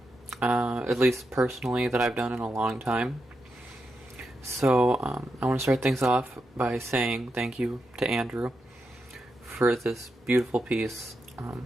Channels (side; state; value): both; normal; correlation 0.86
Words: at least personally, that I've done in a long time. So I want to start things off by saying thank you to Andrew for this beautiful piece.